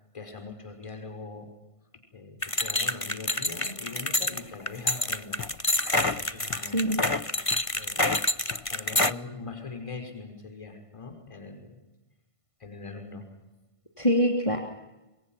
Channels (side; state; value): right; late; 1.5 ms